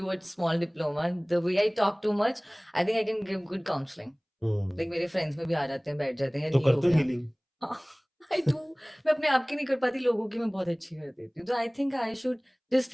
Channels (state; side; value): identical; both; correlation 1.00